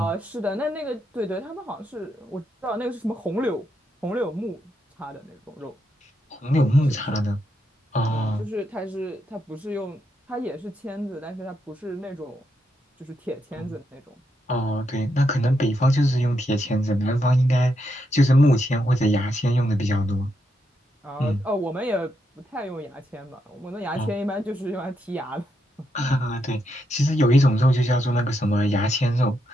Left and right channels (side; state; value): both; normal; correlation 0.81